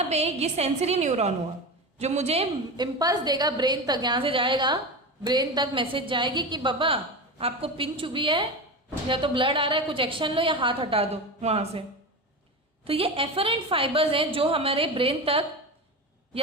पे ये सेंसरी न्यूरॉन हुआ जो मुझे इम्पल्स देगा ब्रेन तक. यहाँ से जाएगा ब्रेन तक, मैसेज जाएगी कि बाबा आपको पिन चुभी है, या तो ब्लड आ रहा है, कुछ एक्शन लो या हाथ हटा दो वहां से. तो ये एफरेंट फाइबर्स हैं जो हमारे ब्रेन तक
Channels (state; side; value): normal; both; correlation 0.24